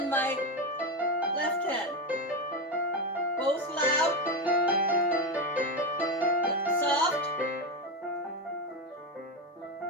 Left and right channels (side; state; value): both; normal; correlation 0.13